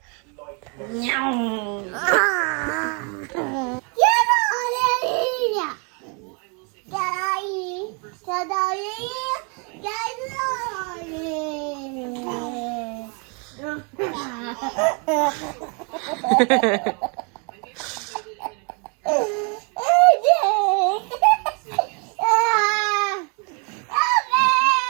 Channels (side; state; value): left; quieter; 35.4 dB